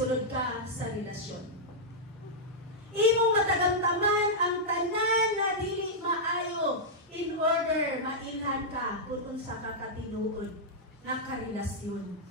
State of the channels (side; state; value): both; normal; correlation -0.08